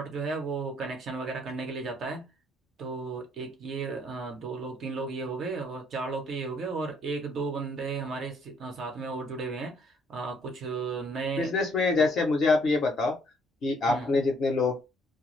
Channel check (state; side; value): normal; both; correlation 0.66